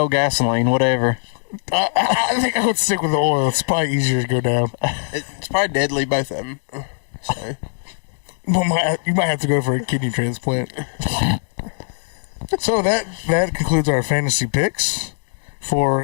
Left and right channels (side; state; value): right; silent; digital silence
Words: gasoline, whatever. I think I would stick with the oil. It's probably easier to go down. It's probably deadly, both of them. So, well, you might have to go for a kidney transplant. So that concludes our fantasy picks